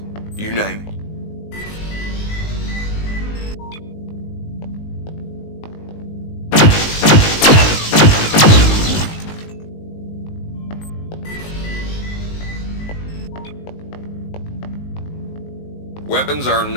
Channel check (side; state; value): right; late; 19 ms